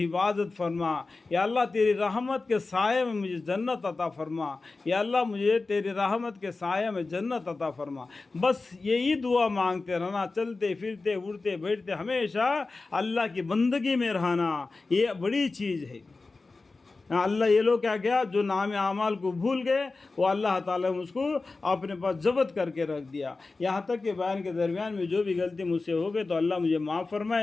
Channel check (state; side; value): quieter; right; 3.7 dB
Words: حفاظت فرما، یا اللہ تیری رحمت کے سائے میں مجھے جنت عطا فرما، یا اللہ مجھے تیری رحمت کے سائے میں جنت عطا فرما. بس یہی دعا مانگتے رہنا، چلتے پھرتے اٹھتے بیٹھتے ہمیشہ اللہ کی بندگی میں رہنا، یہ بڑی چیز ہے۔ اللہ یہ لوگ کیا کیا، جو نام اعمال کو بھول گئے، وہ اللہ تعالیٰ نے اس کو اپنے پاس ضبط کر کے رکھ دیا۔ یہاں تک کہ بیان کے درمیان میں جو بھی غلطی مجھ سے ہو گئی تو اللہ مجھے معاف